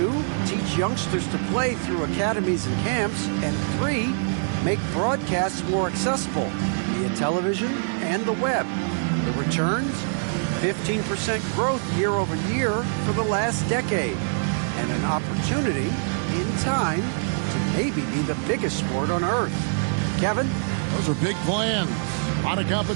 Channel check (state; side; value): silent; left; digital silence